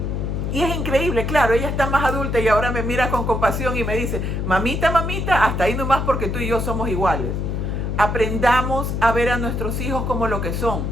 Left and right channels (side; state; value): left; noise; hum, 1 dB below the sound